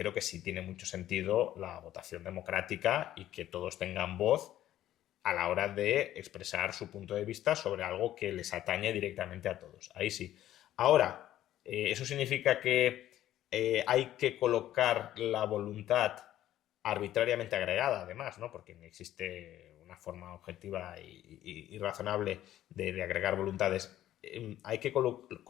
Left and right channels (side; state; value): right; quieter; 12.9 dB